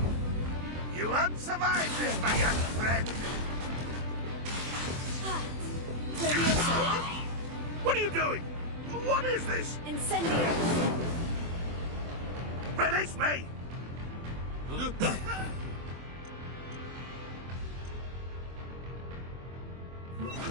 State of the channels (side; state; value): left; late; 24 ms